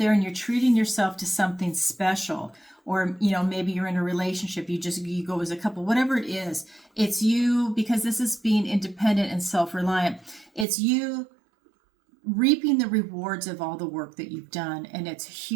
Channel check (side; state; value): left; drops out; at 10.7 s